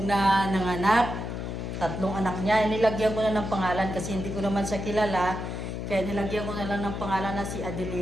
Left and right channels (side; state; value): left; noise; hum, 5 dB below the sound